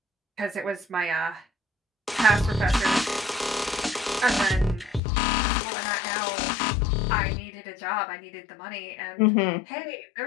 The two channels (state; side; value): drops out; right; at 5.0 s